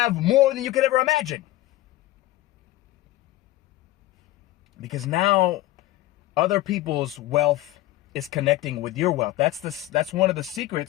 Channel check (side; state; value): right; quieter; 16.3 dB